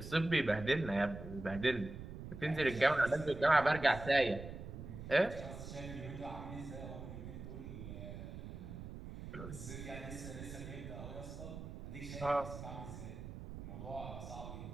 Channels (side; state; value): right; noise; rumble, 10 dB below the sound